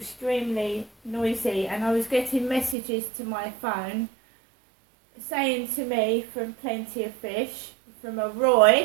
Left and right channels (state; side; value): drops out; left; at 2.8 s